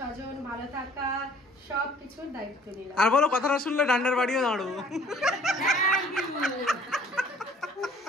ভালো থাকা সবকিছুর দায়িত্ব নিলাম। আর বলো কথাটা শুনলে ডান্ডার বাড়িও দাঁড়াবো।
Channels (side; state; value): both; normal; correlation 0.55